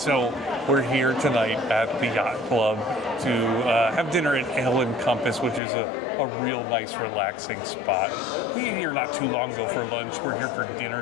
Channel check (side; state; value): right; drops out; at 5.6 s